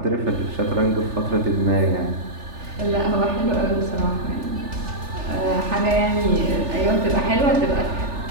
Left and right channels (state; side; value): late; left; 3.4 ms